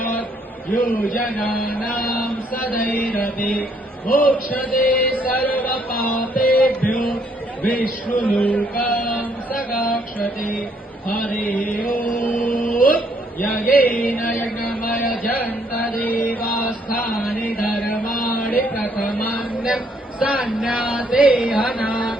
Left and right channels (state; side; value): normal; both; correlation 0.68